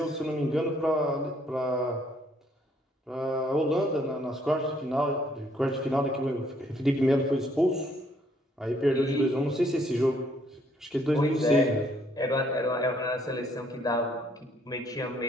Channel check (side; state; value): both; normal; correlation 0.67